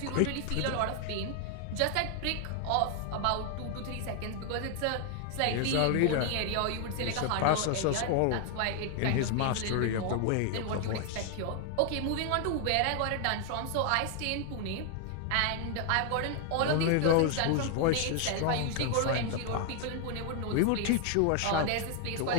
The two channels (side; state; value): both; different; correlation 0.00